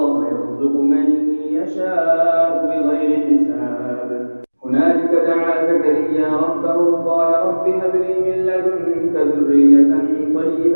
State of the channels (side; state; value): both; inverted; correlation -1.00